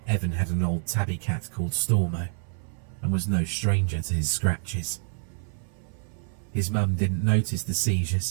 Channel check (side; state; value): left; silent; 60 dB below the other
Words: Evan had an old tabby cat called Stormo, and was no stranger to his scratches. His mum didn't notice the